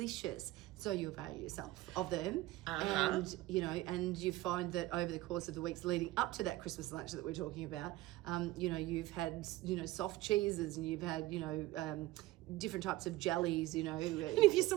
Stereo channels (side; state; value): left; quieter; 17.7 dB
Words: So you avail yourself of them, and you find that over the course of the weeks leading up to that Christmas lunch that we're talking about, you've had soft cheeses, and you've had different types of jellies. And if you're